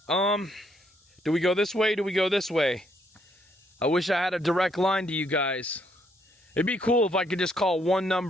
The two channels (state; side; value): normal; both; correlation 0.71